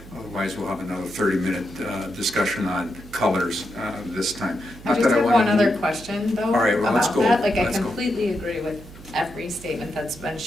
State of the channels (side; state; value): right; noise; hum, 18 dB below the sound